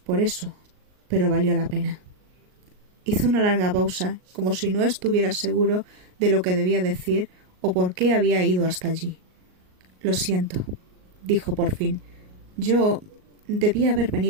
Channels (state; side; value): late; left; 38 ms